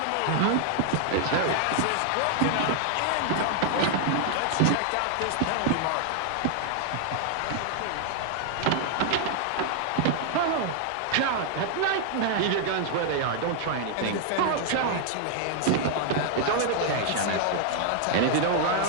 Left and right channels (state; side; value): different; both; correlation 0.00